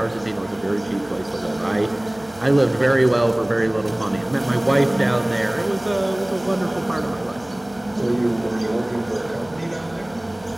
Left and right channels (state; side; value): noise; left; hum, 24 dB below the sound